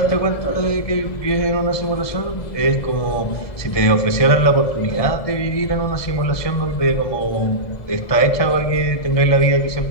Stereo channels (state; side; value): late; right; 1.7 ms